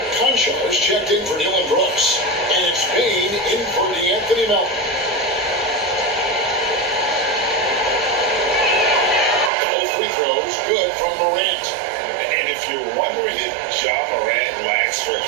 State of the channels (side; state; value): left; drops out; at 9.5 s